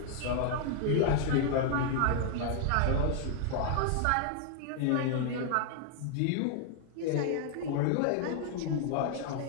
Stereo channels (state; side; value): different; both; correlation 0.00